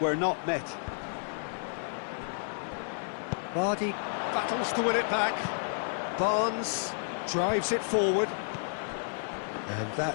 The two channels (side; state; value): right; silent; 57 dB below the other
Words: not met. Vardy battles to win it back. Barnes drives it forward. And